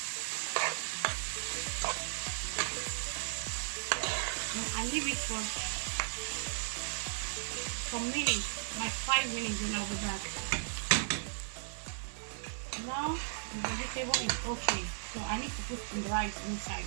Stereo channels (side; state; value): left; silent; 54 dB below the other